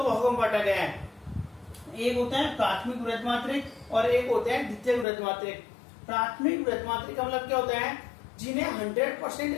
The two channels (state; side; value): drops out; right; at 5.1 s